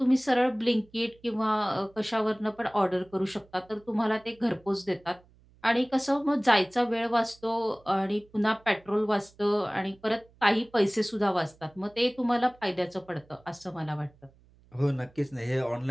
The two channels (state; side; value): noise; right; hum, 29 dB below the sound